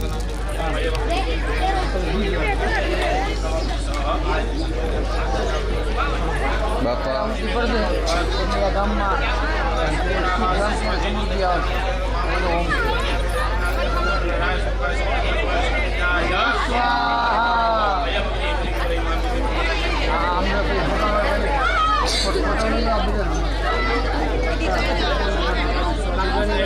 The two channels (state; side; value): identical; both; correlation 1.00